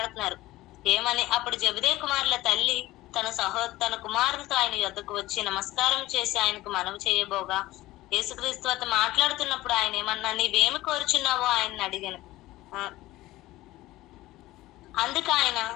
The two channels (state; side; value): quieter; right; 17.3 dB